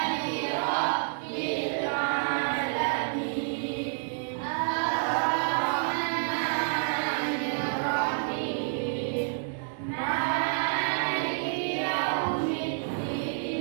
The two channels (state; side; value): silent; left; digital silence